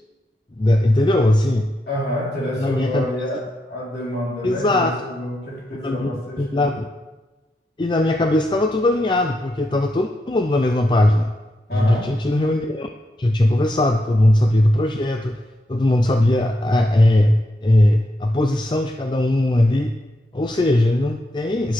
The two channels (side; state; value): both; normal; correlation 0.83